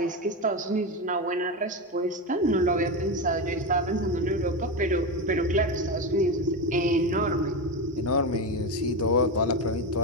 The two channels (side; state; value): both; normal; correlation 0.16